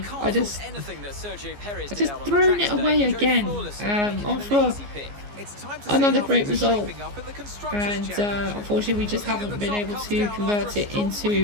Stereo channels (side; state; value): left; late; 14 ms